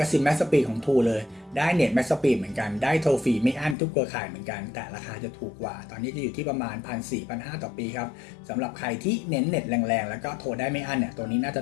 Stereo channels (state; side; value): drops out; right; at 3.8 s